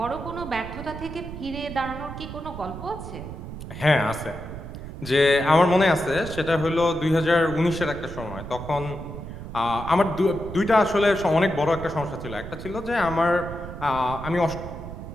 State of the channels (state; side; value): noise; right; rumble, 10 dB below the sound